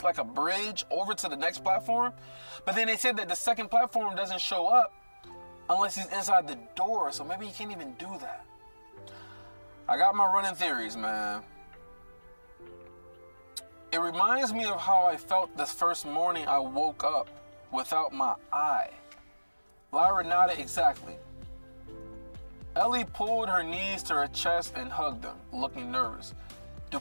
like a bridge over to the next platform. But then they said that the second platform doesn't show up unless he's inside the door, so maybe he can't even do that. I got my running theories, man. It reminds me of how I felt this first morning I woke up without my eye. Lyra nodded exactly. Ellie pulled her knees to her chest and hugged them, looking nervous. Do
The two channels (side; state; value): both; inverted; correlation -1.00